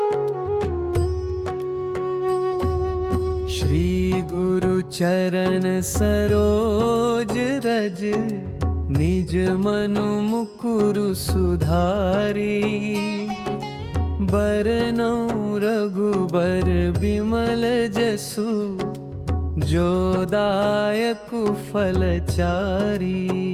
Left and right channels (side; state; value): both; identical; correlation 1.00